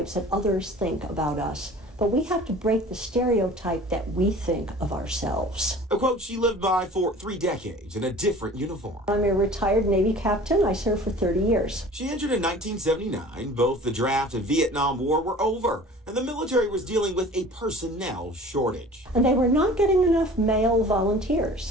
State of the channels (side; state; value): both; normal; correlation 0.44